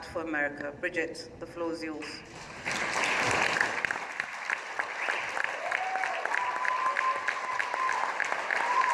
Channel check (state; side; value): identical; both; correlation 1.00